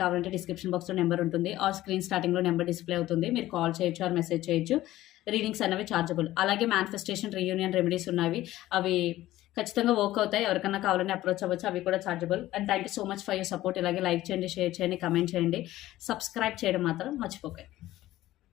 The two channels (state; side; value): quieter; right; 15.4 dB